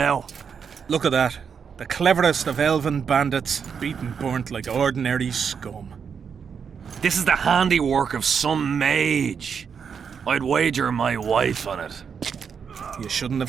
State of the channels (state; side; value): quieter; left; 6.7 dB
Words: Look at that. The cleverest of elven bandits, beaten burnt like ordinary scum. This is the handiwork of some mage. I'd wager my wife on it. You shouldn't have